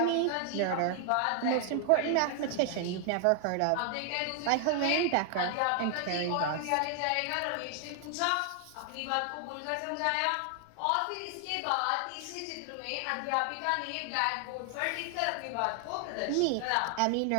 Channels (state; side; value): different; both; correlation 0.00